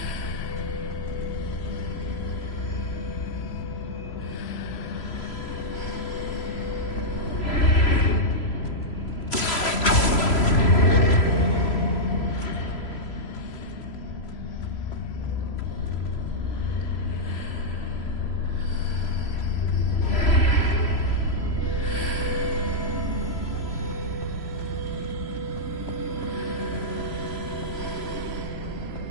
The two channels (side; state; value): right; late; 3.0 ms